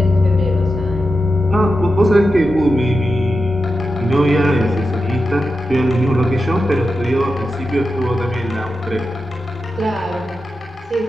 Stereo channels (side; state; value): both; normal; correlation 0.90